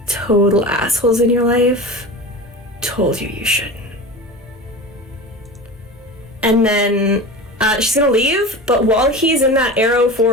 total assholes in your life told you you shouldn't. And then she's gonna leave, but while he's in that Arrow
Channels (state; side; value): normal; both; correlation 0.31